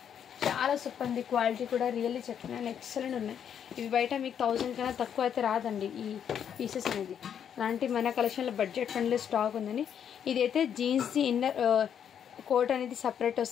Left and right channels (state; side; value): quieter; right; 8.6 dB